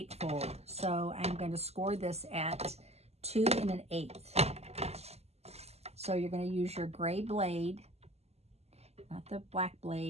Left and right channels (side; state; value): left; late; 0.30 ms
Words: so I'm going to score this at 2 1/8. So you're going to use your gray blade, not the black